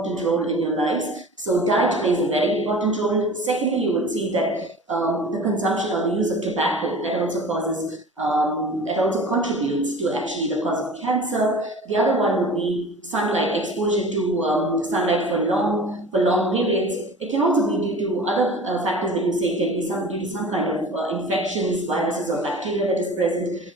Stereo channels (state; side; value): normal; both; correlation 0.40